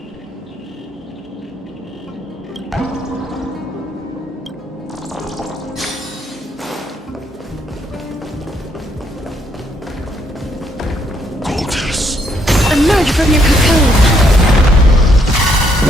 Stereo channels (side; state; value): both; normal; correlation 0.71